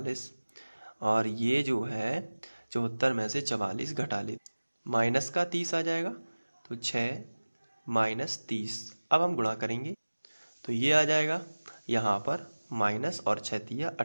और ये जो है 74 में से 44 घटा लेते, माइनस का 30 आ जाएगा, तो 6 - 30। अब हम गुणा करेंगे तो ये आ जाएगा यहाँ पर माइनस और 6 तिया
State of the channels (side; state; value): both; inverted; correlation -1.00